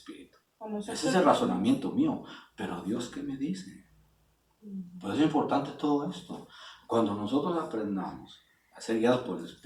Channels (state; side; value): identical; both; correlation 1.00